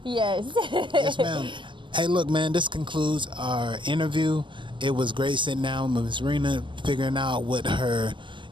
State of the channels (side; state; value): left; late; 0.23 ms